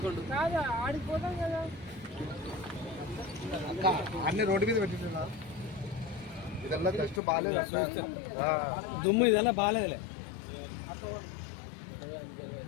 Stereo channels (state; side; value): drops out; right; at 7.2 s